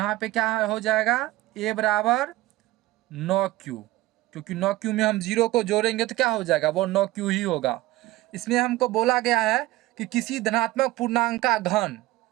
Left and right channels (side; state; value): left; quieter; 17.9 dB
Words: पे क्या हो जाएगा a बराबर 9q, क्योंकि 9q में हम 0 को जोड़ेंगे तो क्या हो जाएगा वो 9q ही होगा। इसमें हमको बोला गया है कि किसी धनात्मक पूर्णांक का घन,